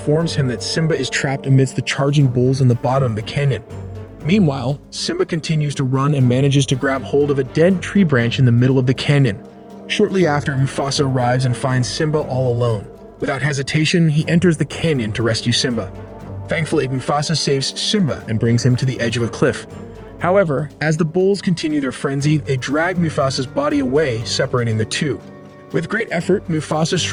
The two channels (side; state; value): both; identical; correlation 1.00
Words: him that Simba is trapped amidst the charging bulls in the bottom of the canyon. Meanwhile, Simba continues to run and manages to grab hold of a dead tree branch in the middle of the canyon. Shortly after, Mufasa arrives and finds Simba all alone. Without hesitation, he enters the canyon to rescue Simba. Thankfully, Mufasa saves Simba and brings him to the edge of a cliff. However, as the bulls continue their frenzy, they drag Mufasa's body away, separating the two. With great effort, Mufasa